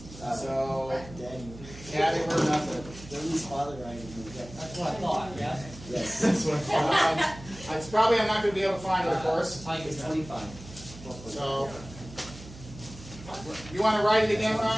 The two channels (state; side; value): noise; right; hum, 16 dB below the sound